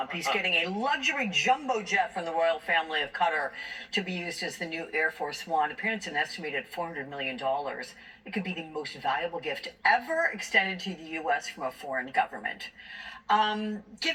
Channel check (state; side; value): identical; both; correlation 1.00